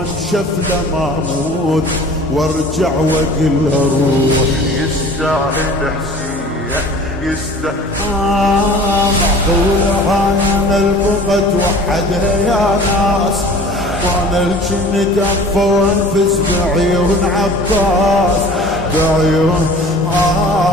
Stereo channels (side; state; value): both; normal; correlation 0.44